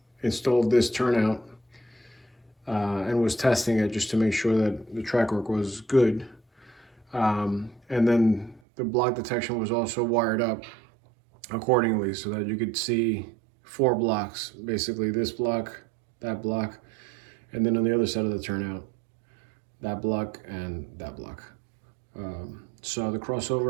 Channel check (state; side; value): drops out; left; at 8.6 s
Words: installed this turnout and was testing it just to make sure that the track work was good. And then the block detection was also wired up accordingly so that you could see 4 blocks, basically this block, that block, and then on the other side of the turnout, that block and that block. So the